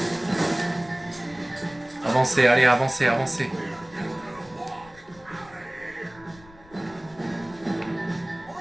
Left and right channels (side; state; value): left; noise; rumble, 24 dB below the sound